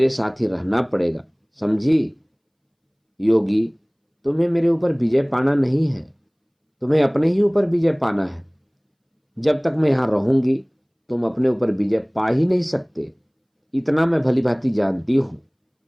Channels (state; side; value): identical; both; correlation 1.00